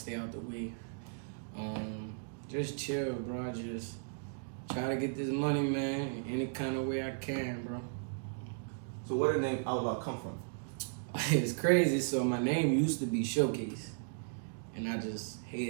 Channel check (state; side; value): silent; left; digital silence